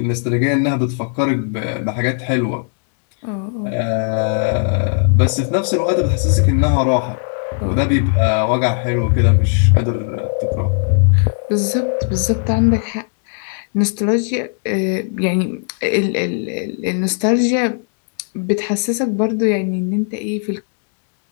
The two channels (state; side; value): silent; right; digital silence